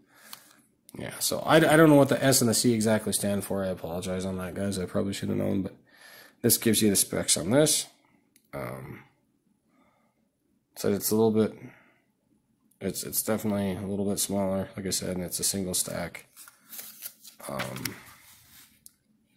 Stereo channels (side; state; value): both; identical; correlation 1.00